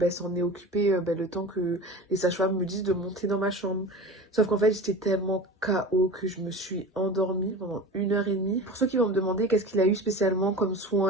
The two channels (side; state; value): both; normal; correlation 0.34